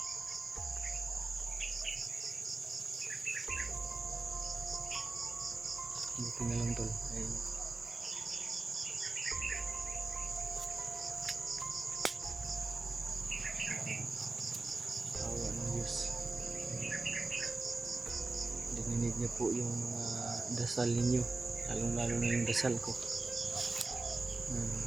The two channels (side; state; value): left; quieter; 3.4 dB